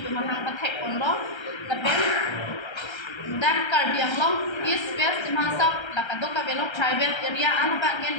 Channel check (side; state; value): right; late; 1.3 ms